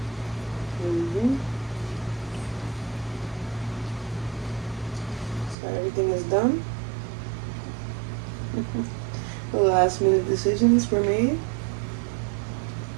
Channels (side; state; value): left; drops out; at 5.6 s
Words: So everything is done. The last minute decisions were made.